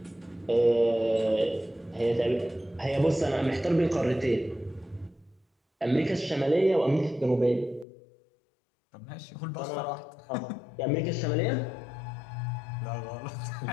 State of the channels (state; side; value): drops out; right; at 7.9 s